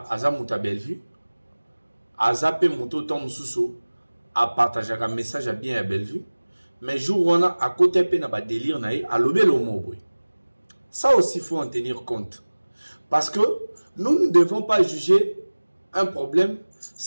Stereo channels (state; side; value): inverted; both; correlation -1.00